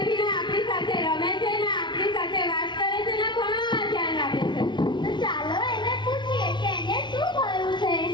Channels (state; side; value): late; right; 0.22 ms